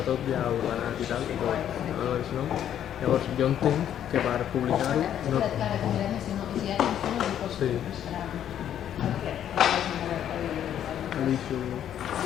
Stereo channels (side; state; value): right; quieter; 10.2 dB